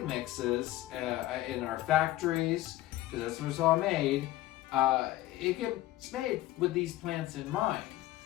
mixes in our factories, because that's where it's all made, it gets made with these plants in mind.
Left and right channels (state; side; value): quieter; right; 15.6 dB